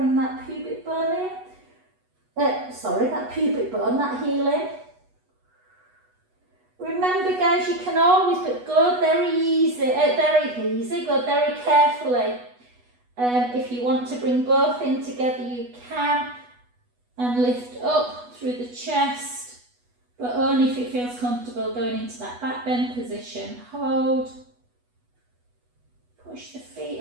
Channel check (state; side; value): late; left; 8.2 ms